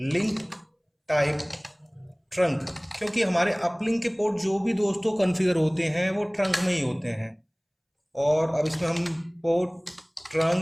टाइप ट्रंक, क्योंकि हमारे अपलिंक के पोर्ट जो भी दोस्तों कॉन्फ़िगर होते हैं वो ट्रंक में ही होते हैं। और अब इसमें हम पोर्ट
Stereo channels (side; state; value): both; identical; correlation 1.00